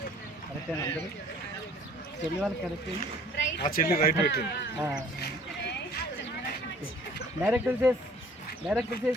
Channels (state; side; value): normal; both; correlation 0.53